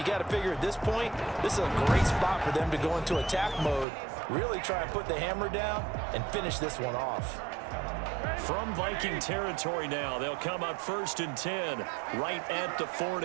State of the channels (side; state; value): left; drops out; at 3.9 s